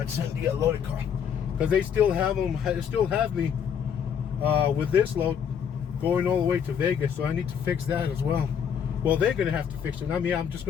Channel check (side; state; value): right; quieter; 7.8 dB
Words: Send the loaded car, because they still have them. They still have me with this load going all the way to Vegas, so I need to fix that as well. Well, they're gonna have to fix it. I mean, I'm just